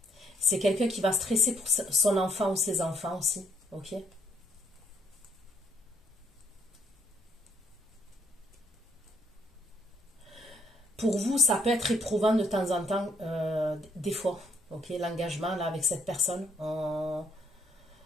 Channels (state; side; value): normal; both; correlation 0.69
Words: C'est quelqu'un qui va stresser pour son enfant ou ses enfants aussi. Ok. Pour vous, ça peut être éprouvant de temps en temps, des fois. Ok, l'engagement là avec cette personne. On